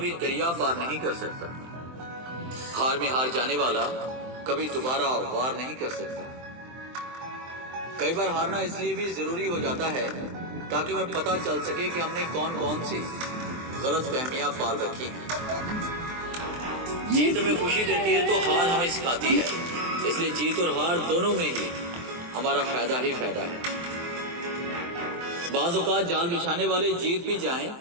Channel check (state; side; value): late; left; 23 ms